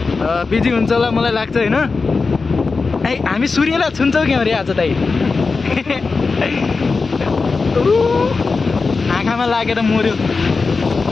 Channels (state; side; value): quieter; right; 4.3 dB